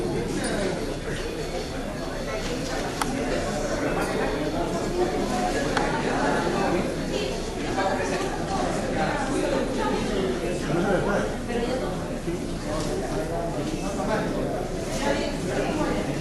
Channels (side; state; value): both; identical; correlation 1.00